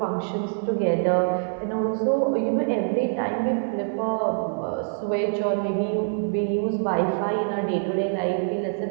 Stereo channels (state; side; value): silent; left; digital silence